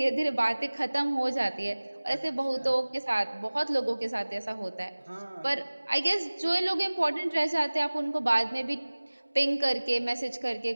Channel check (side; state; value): both; inverted; correlation -1.00